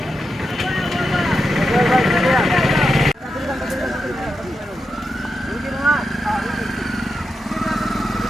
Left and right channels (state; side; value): normal; both; correlation 0.87